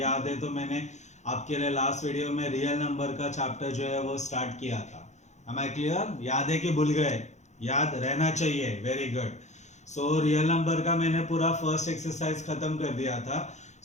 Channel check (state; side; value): late; right; 0.34 ms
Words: है तो मैंने आपके लिए लास्ट वीडियो में रियल नंबर का चैप्टर जो है वो स्टार्ट किया था। Am I clear? याद है कि भूल गए? याद रहना चाहिए। Very good. रियल नंबर का मैंने पूरा फर्स्ट एक्सरसाइज खत्म कर दिया था।